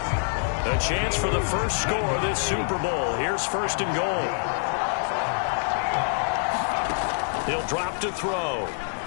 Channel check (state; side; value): silent; right; 61 dB below the other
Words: A chance for the first score of this Super Bowl. Here's 1st and goal. He'll drop to throw.